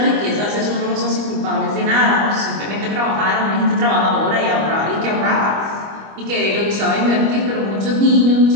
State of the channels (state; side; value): late; left; 25 ms